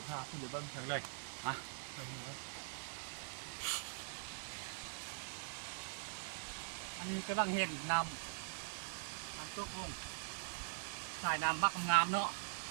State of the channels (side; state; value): left; silent; digital silence